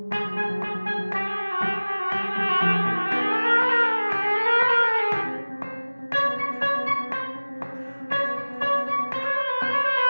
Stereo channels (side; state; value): both; inverted; correlation -1.00